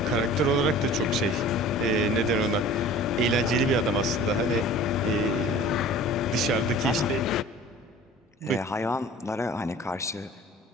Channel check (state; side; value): normal; both; correlation 0.44